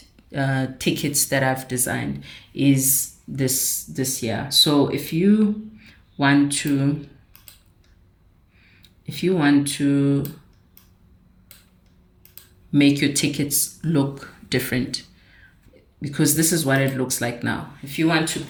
tickets that I've designed is this here. So if you want to make your tickets look different, because this is what it looks like now. If you want to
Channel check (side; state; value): both; identical; correlation 1.00